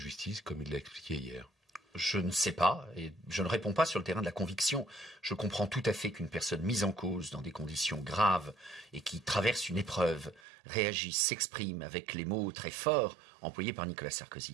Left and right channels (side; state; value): left; drops out; at 10.4 s